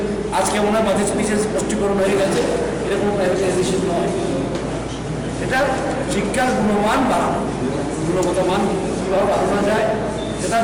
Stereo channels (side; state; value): both; identical; correlation 1.00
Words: আজকে মনে হয় বাজেট স্পিচে স্পষ্টীকরণ হয়ে গেছে, এরকম প্রাইভেটাইজেশন নয়। এটা শিক্ষার গুণমান বাড়ানো, গুণগত মান কীভাবে বাড়ানো যায় সেটার